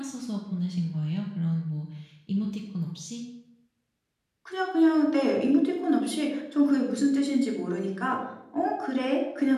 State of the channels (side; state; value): both; identical; correlation 1.00